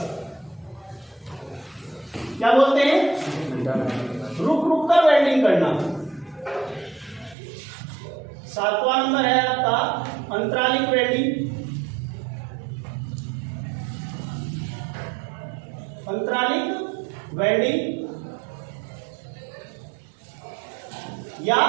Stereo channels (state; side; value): drops out; left; at 7.4 s